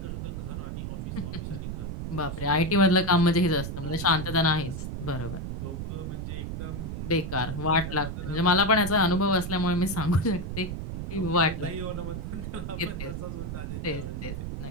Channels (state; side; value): noise; right; rumble, 5 dB below the sound